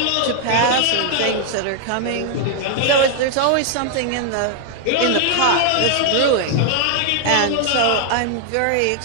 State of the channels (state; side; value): different; both; correlation 0.00